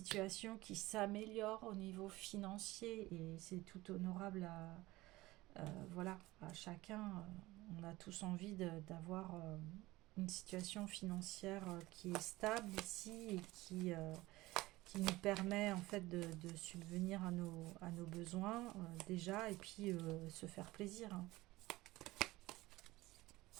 qui s'améliore au niveau financier, et c'est tout honorable voilà, à chacun. On a tous envie d'avoir une situation financière qui est stable ici et qui nous permet en fait de subvenir à nos besoins déjà, et puis se faire plaisir, hein.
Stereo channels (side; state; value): left; quieter; 19.1 dB